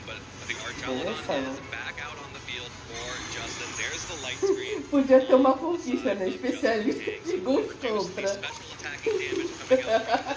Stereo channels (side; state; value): both; identical; correlation 1.00